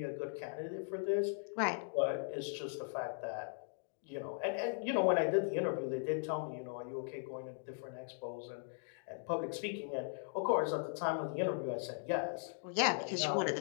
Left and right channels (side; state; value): right; silent; digital silence